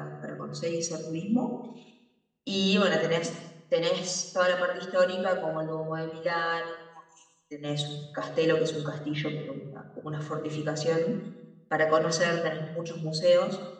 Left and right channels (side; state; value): both; identical; correlation 1.00